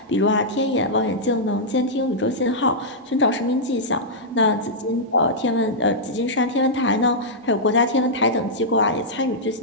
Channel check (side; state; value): both; normal; correlation -0.10